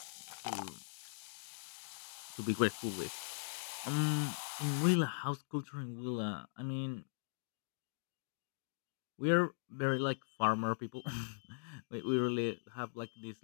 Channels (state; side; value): silent; right; digital silence